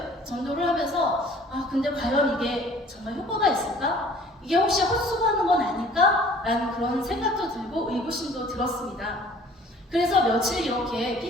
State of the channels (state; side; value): normal; both; correlation 0.52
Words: 전도를 하면서 근데 과연 이게 정말 효과가 있을까? 이게 혹시 헛수고하는 건 아닐까? 라는 그런 생각도 들고 의구심도 들었습니다. 그래서 며칠 이렇게